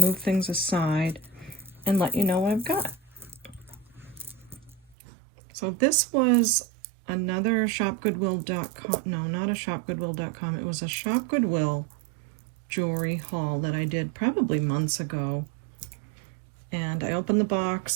things aside and let you know what I've got. So this was another ShopGoodWill.com, no, not a ShopGoodWill.com, it was a ShopGoodWill jewelry haul that I did probably months ago. And I opened the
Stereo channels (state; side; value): drops out; left; at 5.0 s